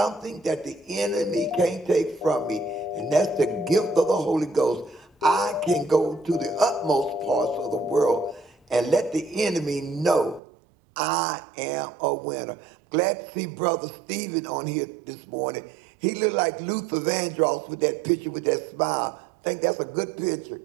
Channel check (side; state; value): left; drops out; at 10.4 s